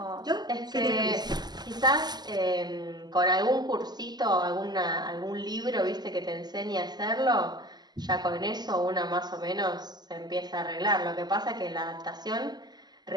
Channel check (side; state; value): left; late; 0.20 ms